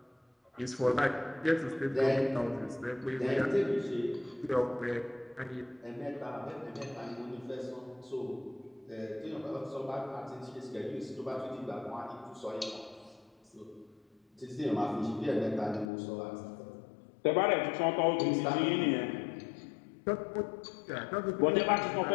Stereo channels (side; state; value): right; drops out; at 15.9 s